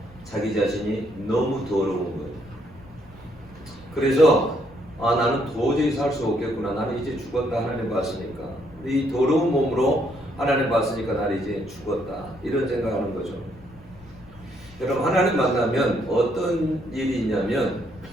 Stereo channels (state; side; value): noise; left; rumble, 23 dB below the sound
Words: 자기 자신이 너무 더러운 거예요. 그래서 나는 도저히 살 수 없겠구나. 나는 이제 죽었다. 하나님 봤으니까. 이 더러운 몸으로 하나님 봤으니까 나는 이제 죽었다. 이런 생각하는 거죠. 여러분 하나님 만나면 어떤 일이 있냐면